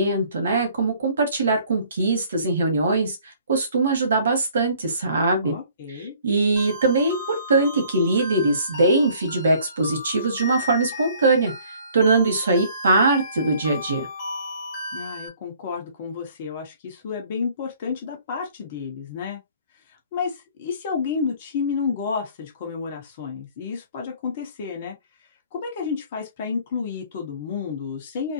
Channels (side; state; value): both; inverted; correlation -0.57